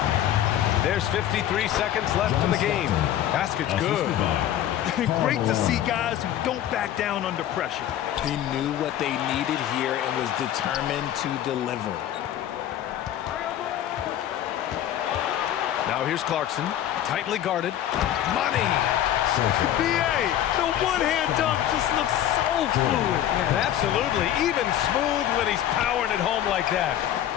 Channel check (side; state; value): right; quieter; 11.5 dB